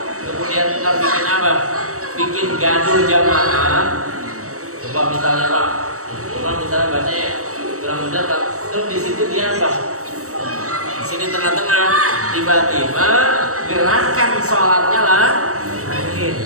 kemudian kita bikin apa? Bikin gaduh jamaah. Coba misalnya Pak, coba misalnya bacanya kurang benar, terus di situ dia apa? Di sini tengah-tengah, tiba-tiba gerakan sholatnya lah.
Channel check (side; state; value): left; late; 0.65 ms